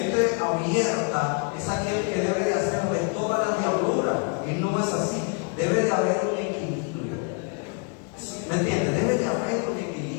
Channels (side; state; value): right; quieter; 35.5 dB